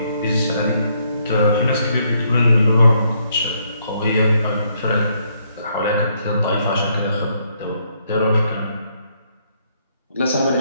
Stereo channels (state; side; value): inverted; both; correlation -0.72